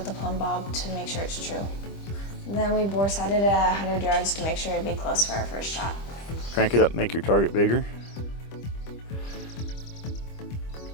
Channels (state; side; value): late; right; 25 ms